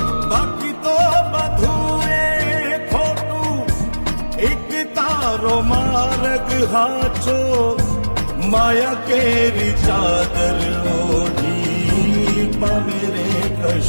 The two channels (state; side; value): inverted; both; correlation -1.00